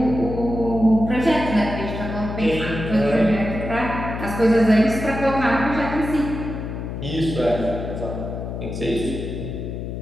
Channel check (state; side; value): noise; left; hum, 6 dB below the sound